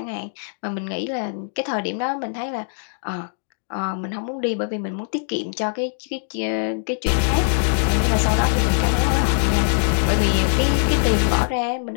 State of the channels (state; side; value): silent; right; digital silence